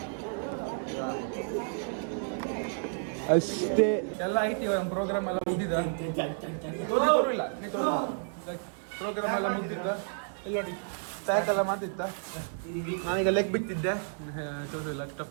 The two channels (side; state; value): left; silent; digital silence